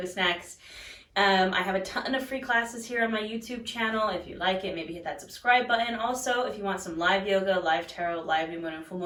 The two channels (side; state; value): both; identical; correlation 1.00